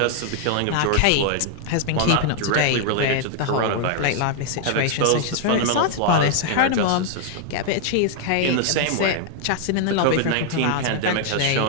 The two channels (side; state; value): both; different; correlation 0.00